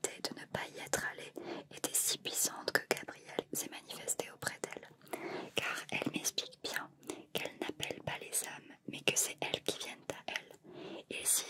de ne pas y être allée étaient si puissantes que Gabrielle s'est manifestée auprès d'elle. Car elle m'explique bien qu'elle n'appelle pas les hommes, mais que c'est elles qui viennent à elle, et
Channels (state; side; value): identical; both; correlation 1.00